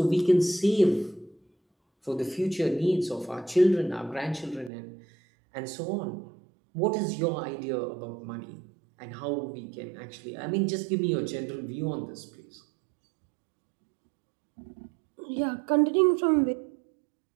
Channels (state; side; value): drops out; left; at 4.7 s